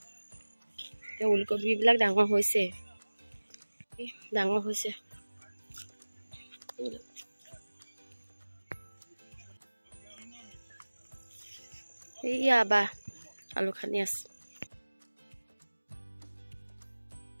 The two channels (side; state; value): both; inverted; correlation -1.00